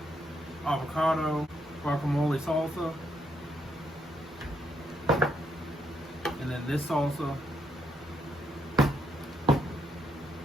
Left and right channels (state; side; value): normal; both; correlation 0.76